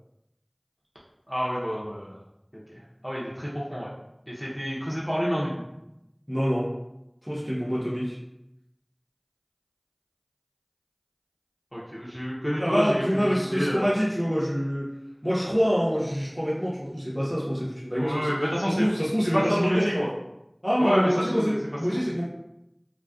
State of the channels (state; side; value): identical; both; correlation 1.00